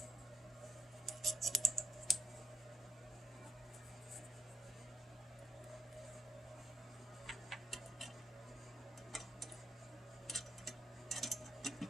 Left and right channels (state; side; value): normal; both; correlation 0.76